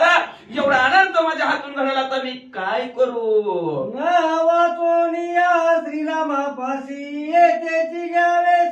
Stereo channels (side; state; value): both; identical; correlation 1.00